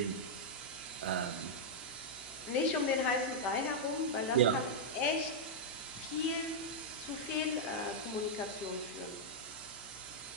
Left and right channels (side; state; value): left; noise; hum, 24 dB below the sound